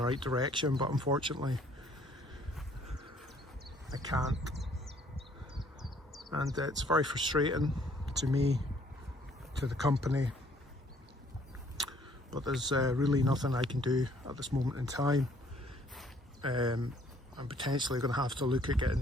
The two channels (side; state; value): both; normal; correlation 0.61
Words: right direction, but unfortunately I can't, and it's very frustrating to me, to the company, but there's really nothing I can do at this moment in time. I'm potentially going to have to look at